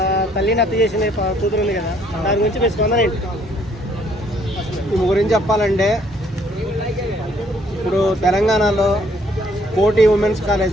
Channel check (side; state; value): both; normal; correlation 0.65